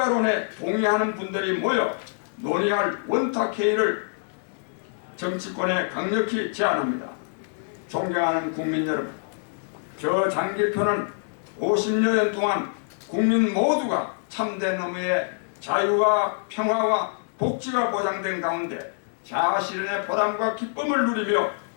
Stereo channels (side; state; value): right; silent; digital silence